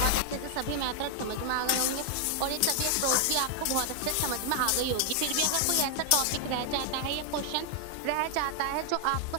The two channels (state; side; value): different; both; correlation 0.00